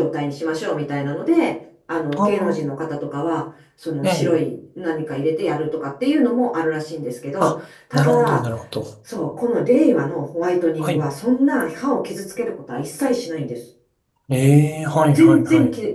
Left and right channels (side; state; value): both; identical; correlation 1.00